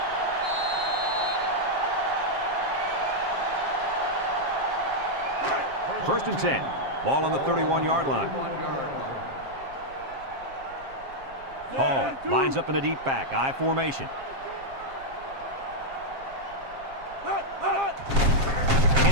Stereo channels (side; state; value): left; late; 7.5 ms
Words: First and 10. Ball on the 31-yard line. 31-yard line. Hall lines up in the deep back. I formation.